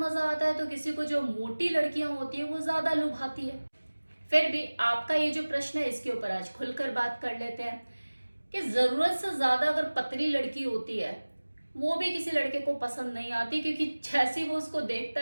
आता है तो किसी को जो मोटी लड़कियां होती है वो ज्यादा लुभाती है। फिर भी आपका ये जो प्रश्न है इसके ऊपर आज खुलकर बात कर लेते हैं कि जरूरत से ज्यादा अगर पतली लड़की होती है वो भी किसी लड़के को पसंद नहीं आती, क्योंकि जैसे ही वो उसको देखता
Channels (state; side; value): inverted; both; correlation -1.00